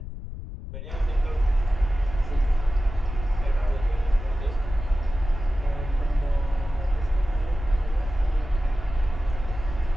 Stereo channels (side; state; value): left; noise; rumble, 9 dB below the sound